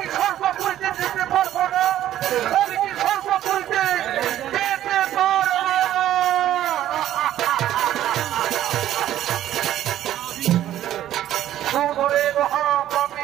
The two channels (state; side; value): quieter; left; 12.4 dB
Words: সর্বপুরীতে যেতে পারবো না? আমি কি সর্বপুরীতে যেতে পারবো না? সুধরে